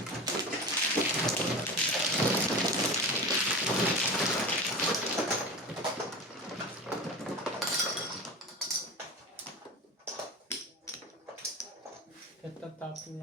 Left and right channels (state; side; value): normal; both; correlation 0.28